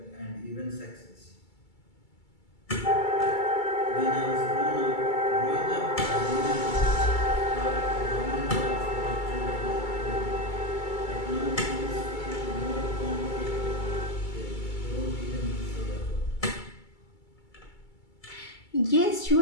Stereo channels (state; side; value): late; right; 2.3 ms